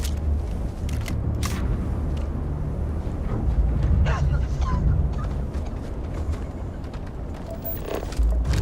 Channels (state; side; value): identical; both; correlation 1.00